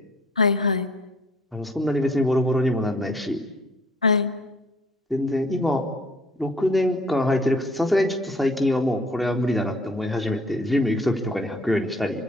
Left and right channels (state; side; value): normal; both; correlation 0.56